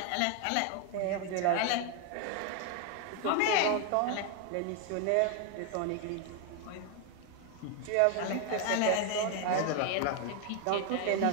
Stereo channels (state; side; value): different; both; correlation 0.01